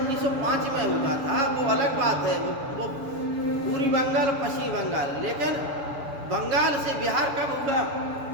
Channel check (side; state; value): left; late; 6.9 ms